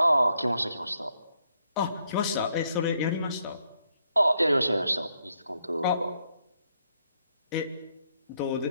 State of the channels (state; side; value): inverted; both; correlation -0.76